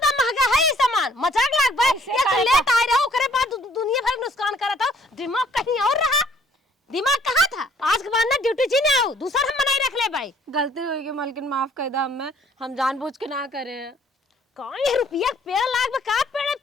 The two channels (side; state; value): both; normal; correlation 0.60